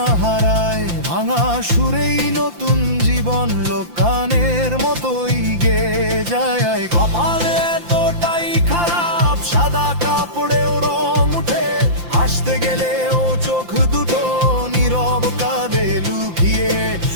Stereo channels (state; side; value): late; left; 5.8 ms